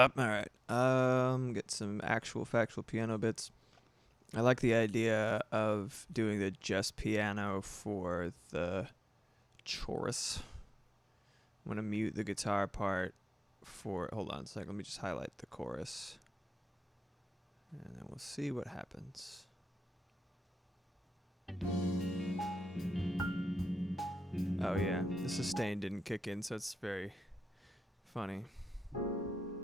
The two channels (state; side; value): normal; both; correlation 0.94